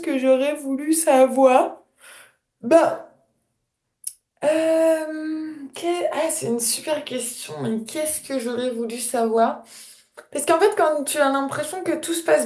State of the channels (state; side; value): identical; both; correlation 1.00